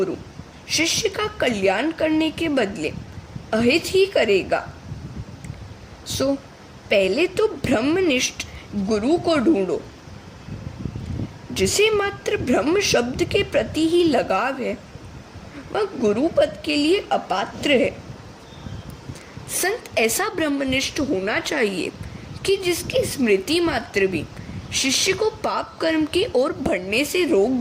शिष्य का कल्याण करने के बदले अहित ही करेगा। सो पहले तो ब्रह्मनिष्ठ गुरु को ढूंढो। जिसे मात्र ब्रह्म शब्द के प्रति ही लगाव है वह गुरु पद के लिए अपात्र है। संत ऐसा ब्रह्मनिष्ठ होना चाहिए कि जिसकी स्मृति मात्र भी शिष्य को पाप कर्म की ओर बढ़ने से रोक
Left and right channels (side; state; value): both; identical; correlation 1.00